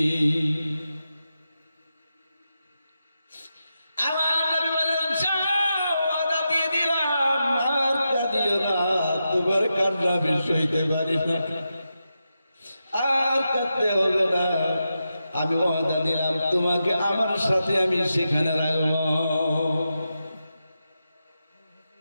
আমার নবী বলেন, ওয়াদা দিয়ে দিলাম, আর কাঁদিও না, তোমার কান্না আমি সইতে পারি না, আর কাঁদতে হবে না, আমি ওয়াদা দিলাম তোমাকে আমার সাথে আমি সেখানে রাখবো।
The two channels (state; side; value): inverted; both; correlation -0.88